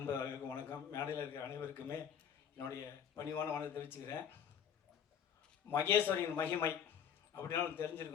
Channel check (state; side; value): quieter; right; 8.4 dB